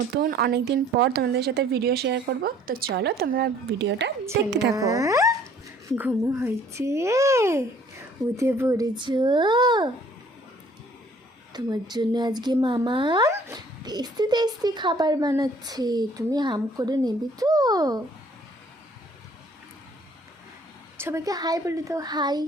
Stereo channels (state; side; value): normal; both; correlation 0.58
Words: অনেক দিন পর তোমাদের সাথে ভিডিও শেয়ার করব। তো চলো তোমরা ভিডিওটা দেখতে থাকো। ঘুমো হয়েছে, উঠে পড়েছো? তোমার জন্য আজকে মামা টেস্টি টেস্টি খাবার বানাচ্ছে, তুমি হাম করে নেবে তো? সবাইকে হাই বলে দাও, হাই